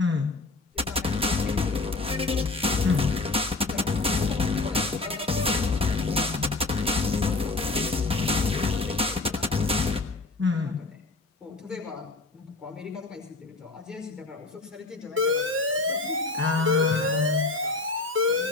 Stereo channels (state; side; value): quieter; right; 3.4 dB